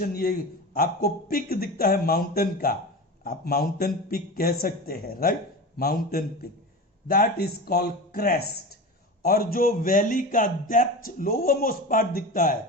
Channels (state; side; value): normal; both; correlation 0.28